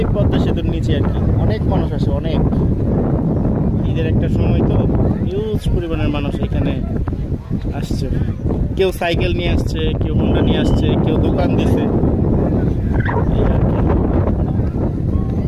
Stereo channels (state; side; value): identical; both; correlation 1.00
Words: পদ্মা সেতুর নিচে আর কি অনেক মানুষ আসে, অনেক। ঈদের একটা সময় তো হিউজ পরিমাণের মানুষ এখানে আসছে। কেউ সাইকেল নিয়ে আসছে, কেউ হোন্ডা নিয়ে আসছে, কেউ দোকান দিছে, এই আর কি।